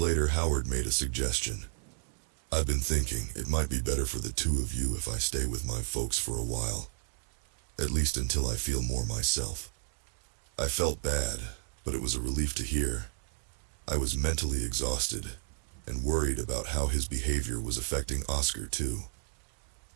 Howard made a suggestion. "I've been thinking it might be better for the two of you if I stay with my folks for a while. At least until I feel more myself." I felt bad, but it was a relief to hear. I was mentally exhausted, and worried about how his behavior was affecting Oscar too.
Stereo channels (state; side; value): silent; left; digital silence